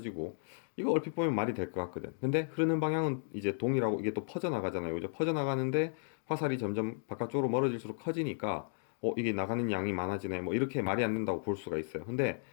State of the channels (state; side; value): silent; right; digital silence